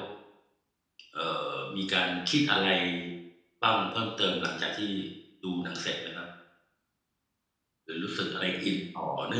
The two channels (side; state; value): both; identical; correlation 1.00